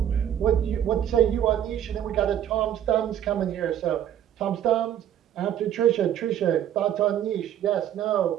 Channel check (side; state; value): left; quieter; 10.6 dB